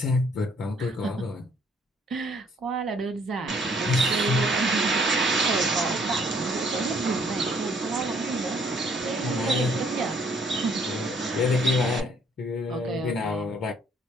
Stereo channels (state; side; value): normal; both; correlation 0.63